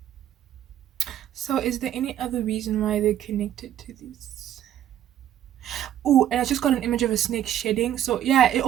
So, is there any other reason why they're connected to this? Oh, and I just got an image of a snake shedding. So yeah, it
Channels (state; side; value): quieter; left; 11.2 dB